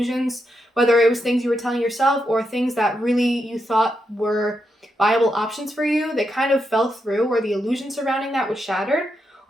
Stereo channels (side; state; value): both; normal; correlation 0.83